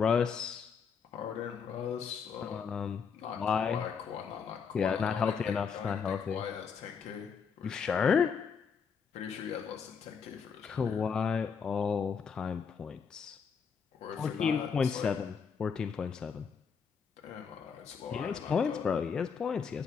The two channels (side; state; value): right; quieter; 6.3 dB